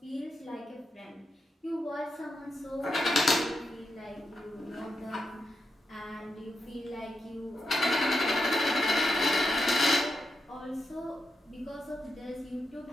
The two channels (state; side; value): normal; both; correlation 0.86